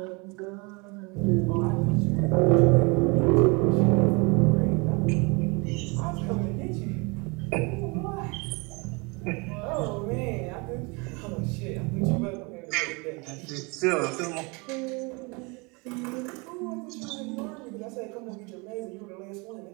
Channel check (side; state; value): left; quieter; 29.1 dB